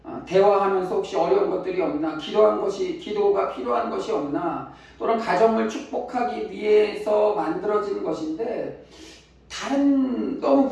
대화하면서 혹시 어려운 것들이 없나, 기도가 필요한 것이 없나, 또는 가정을 축복하기 위해서 만들어진 것인데 너무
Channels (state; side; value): identical; both; correlation 1.00